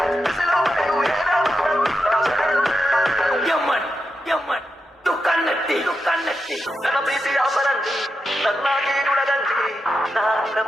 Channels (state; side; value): normal; both; correlation 0.87